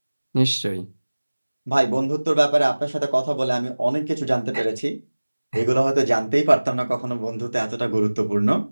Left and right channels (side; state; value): both; inverted; correlation -1.00